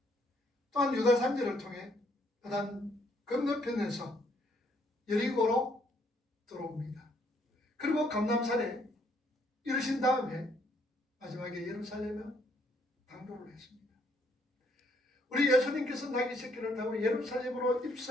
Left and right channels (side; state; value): both; normal; correlation 0.69